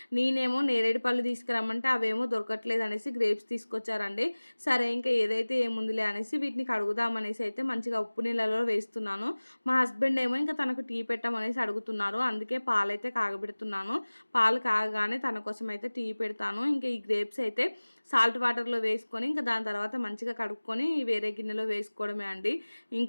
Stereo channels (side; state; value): both; inverted; correlation -1.00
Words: నేనేమో నేరేడు పళ్ళు తీసుకురమ్మంటే అవేమో దొరకట్లేదు అనేసి గ్రేప్స్ తీసుకొచ్చారండి. సరే ఇంకా ఏదైతే ఏముందిలే అనేసి వీటిని కడుగుదామనేసి అయితే మంచిగా ఉప్పు నీళ్ళలో వేస్తున్నాను. మా హస్బెండ్ ఏమో ఇంకా తనకు టీ పెట్టమనేసి అడుగుతున్నారు, అందుకే పాలైతే కాగబెడుతున్నాను. పాలు కాగగానే తన కోసం అయితే టీ పెడతాను. ఇంకా ఈ గ్రేప్స్ అయితే సాల్ట్ వాటర్లో వేసుకొని ఇంకా దాని తర్వాత మంచిగా కడుక్కొని వేరే గిన్నెలో వేసుకోవడమే అండి.